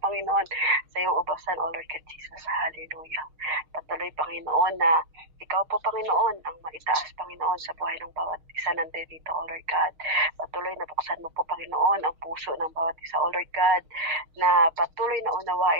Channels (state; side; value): late; left; 6.4 ms